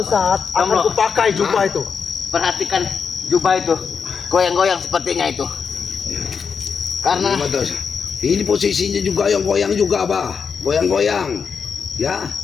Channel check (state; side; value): quieter; right; 6.1 dB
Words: saat akan Tomblo. kupakai jubah itu. perhatikan jubah itu. Goyang-goyang sepertinya itu. Karena Ini betul. Ini posisinya juga yang goyang juga, Bah. Goyang-goyang. Ya.